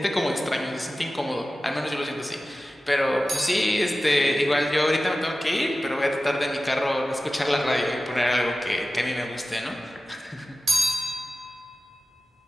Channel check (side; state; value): both; normal; correlation 0.95